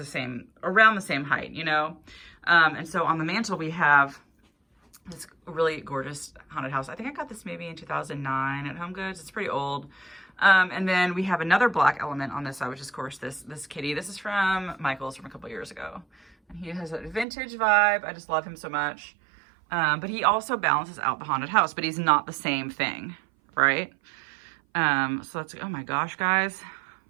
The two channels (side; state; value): left; drops out; at 17.2 s